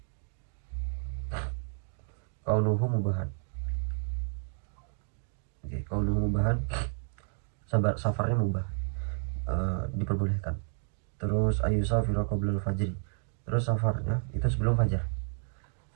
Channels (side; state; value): left; silent; 56 dB below the other